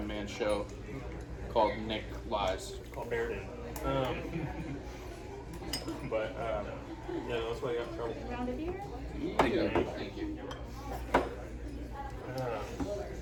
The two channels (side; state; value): both; identical; correlation 1.00